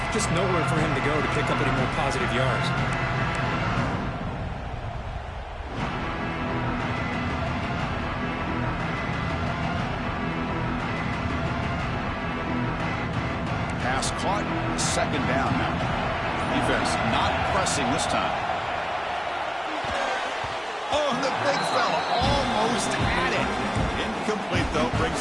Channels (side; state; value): both; identical; correlation 1.00